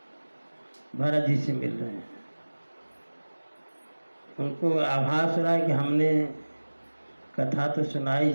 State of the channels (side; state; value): both; inverted; correlation -1.00